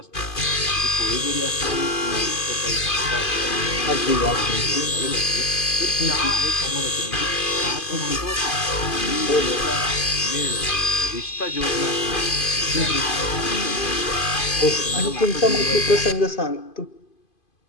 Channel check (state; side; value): late; right; 2.5 ms